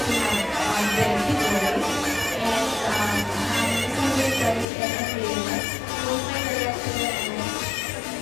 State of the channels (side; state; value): right; drops out; at 4.7 s